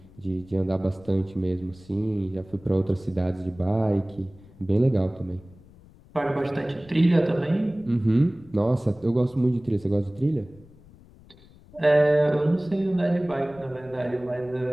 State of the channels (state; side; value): noise; left; rumble, 24 dB below the sound